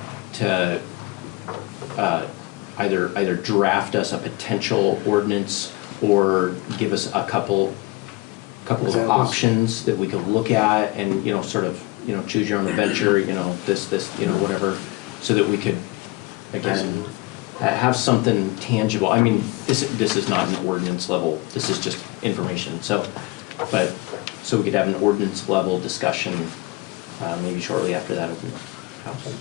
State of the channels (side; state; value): right; quieter; 22.4 dB